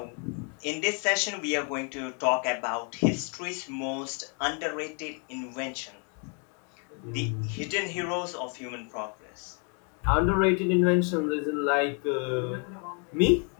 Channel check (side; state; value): right; quieter; 38.5 dB